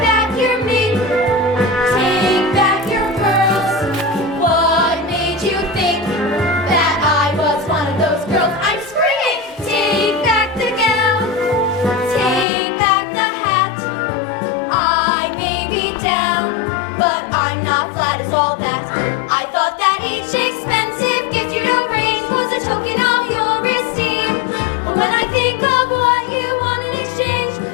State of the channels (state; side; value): drops out; right; at 12.5 s